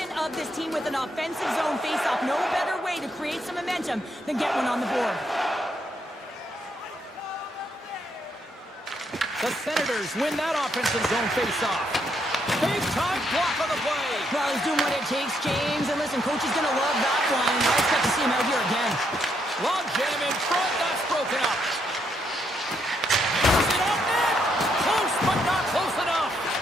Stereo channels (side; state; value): both; normal; correlation 0.76